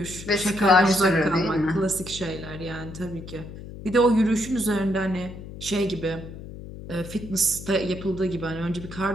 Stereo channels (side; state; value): left; noise; hum, 12 dB below the sound